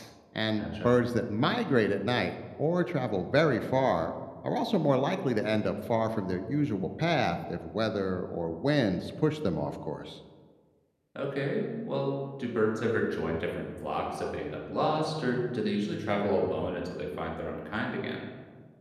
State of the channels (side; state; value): both; identical; correlation 1.00